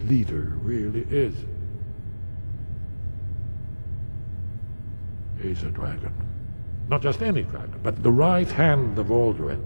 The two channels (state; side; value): inverted; both; correlation -1.00